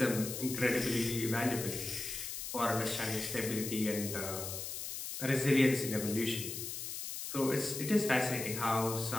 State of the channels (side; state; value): left; noise; hiss, 6 dB below the sound